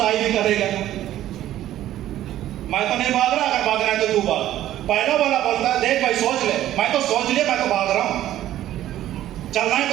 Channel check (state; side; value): quieter; left; 13.1 dB